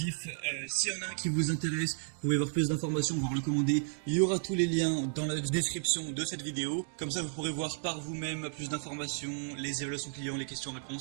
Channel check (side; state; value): left; silent; digital silence